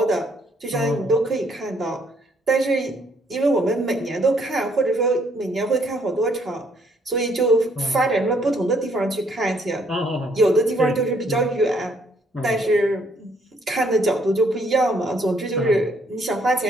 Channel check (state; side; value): normal; both; correlation 0.67